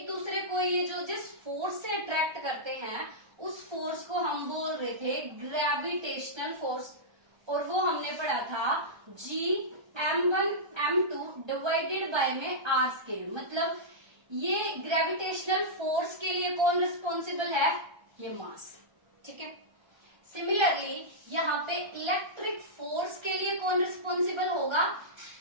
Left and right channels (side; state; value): left; late; 1.3 ms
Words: दूसरे को ये जो जिस फोर्स से अट्रैक्ट करते हैं उस फोर्स को हम बोल रहे थे ग्रेविटेशनल फोर्स, और वो हमने पढ़ा था G M1 M2 divided by में R स्क्वायर। मतलब ये ग्रेविटेशनल फोर्स के लिए कौन रिस्पॉन्सिबल है? ये मास, ठीक है। सिमिलरली यहाँ पे इलेक्ट्रिक फोर्स के लिए कौन रिस्पॉन्सिबल होगा?